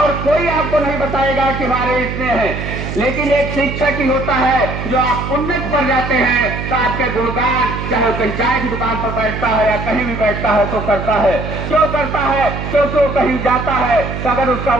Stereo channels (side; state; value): right; noise; hum, 6 dB below the sound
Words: कोई आपको नहीं बताएगा कि हमारे इतने हैं, लेकिन एक शिक्षक ही होता है जो आप उन्नत पर जाते हैं तो आपके गुणगान, चाहे वो चाय की दुकान पर बैठता है या कहीं भी बैठता है तो करता है। क्यों करता है? क्योंकि वो कहीं जाता है तो अगर उसका